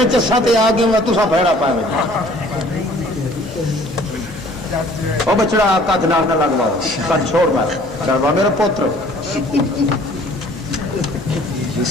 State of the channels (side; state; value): both; normal; correlation 0.54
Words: چسا تے آ گیا تسا بھڑا پائے وہ بچڑا کد نال نہ لگوا کد چھوڑ بار ڈروا میرا پوتر